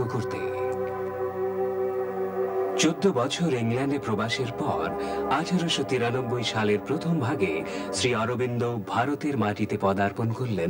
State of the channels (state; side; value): identical; both; correlation 1.00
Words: করতে। 14 বছর ইংল্যান্ডে প্রবাসের পর 1893 সালের প্রথম ভাগে শ্রী অরবিন্দ ভারতের মাটিতে পদার্পণ